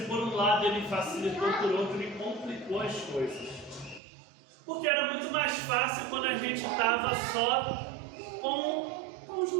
por um lado ele facilitou, por outro ele complicou as coisas. Porque era muito mais fácil quando a gente estava só com um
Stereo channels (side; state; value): left; drops out; at 4.0 s